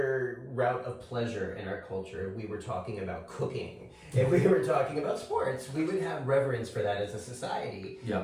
route of pleasure in our culture, if we were talking about cooking, if we were talking about sports, we would have reverence for that as a society.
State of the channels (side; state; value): both; identical; correlation 1.00